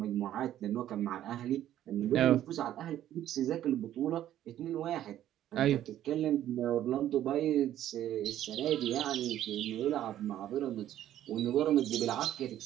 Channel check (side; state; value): left; quieter; 12.1 dB